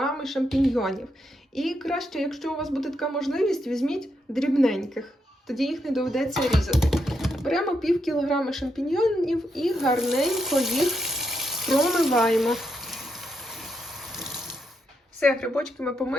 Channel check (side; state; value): both; normal; correlation 0.81